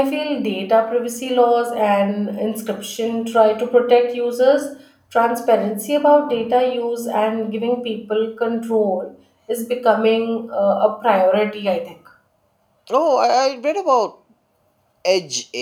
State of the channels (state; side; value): identical; both; correlation 1.00